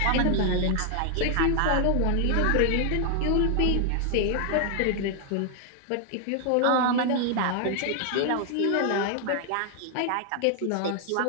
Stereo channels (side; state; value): both; different; correlation 0.00